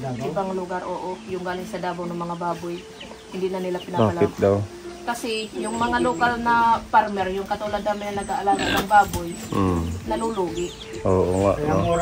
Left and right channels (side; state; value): both; identical; correlation 1.00